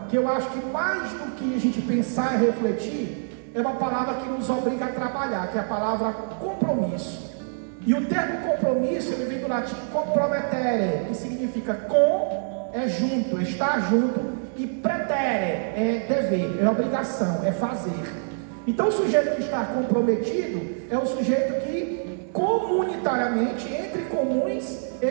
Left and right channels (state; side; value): silent; left; digital silence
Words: que eu acho que mais do que a gente pensar e refletir, é uma palavra que nos obriga a trabalhar, que é a palavra compromisso. E o termo compromisso, ele vem do latim compromettere, que significa com é junto, é estar junto, e pretere é dever, é obrigação, é fazer. Então o sujeito que está comprometido é o sujeito que comunitariamente, entre comuns,